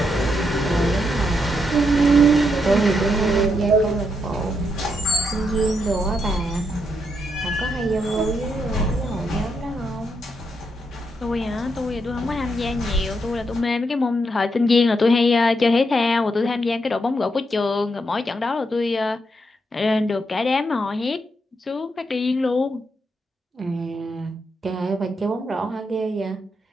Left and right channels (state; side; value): normal; both; correlation 0.80